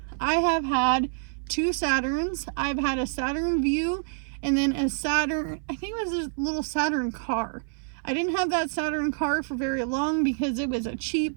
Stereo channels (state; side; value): silent; left; 60 dB below the other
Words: I have had 2 Saturns. I've had a Saturn View and then a Saturn, I think it was a little Saturn car. I didn't have that Saturn car for very long because it was a